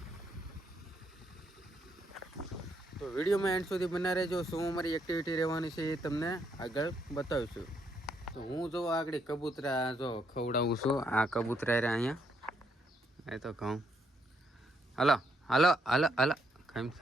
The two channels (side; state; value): both; normal; correlation 0.75